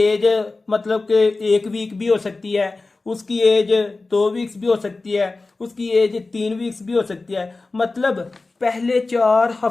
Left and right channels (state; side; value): quieter; right; 3.5 dB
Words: मतलब कि 1 वीक भी हो सकती है, उसकी एज 2 वीक्स भी हो सकती है, उसकी एज 3 वीक्स भी हो सकती है, मतलब पहले 4